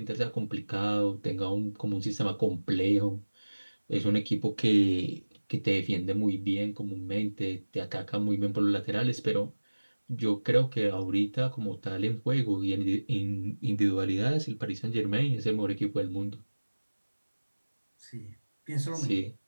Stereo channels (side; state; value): both; inverted; correlation -1.00